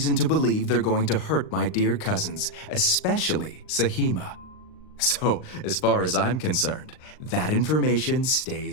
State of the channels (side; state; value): right; late; 39 ms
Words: to believe they're going to hurt my dear cousins, especially Sahima. So, as far as I'm concerned, that information